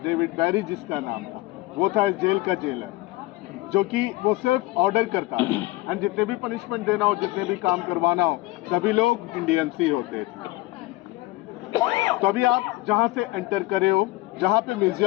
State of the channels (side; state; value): right; quieter; 19.9 dB